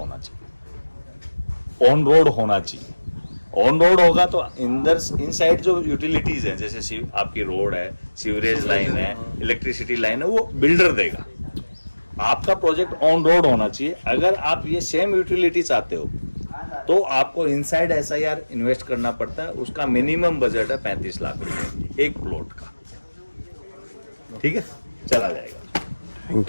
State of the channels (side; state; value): both; inverted; correlation -1.00